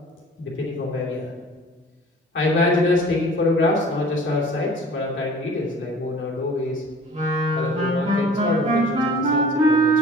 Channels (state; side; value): normal; both; correlation 0.46